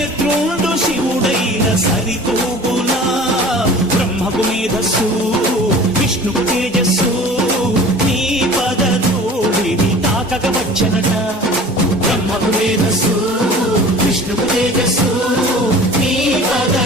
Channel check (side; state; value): both; normal; correlation 0.43